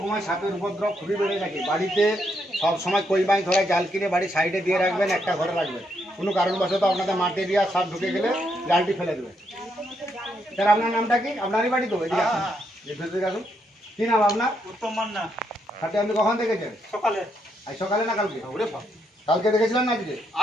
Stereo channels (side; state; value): both; normal; correlation 0.78